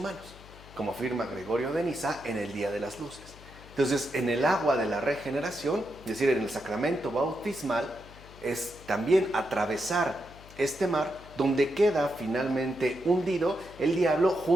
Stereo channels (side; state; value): left; noise; hum, 20 dB below the sound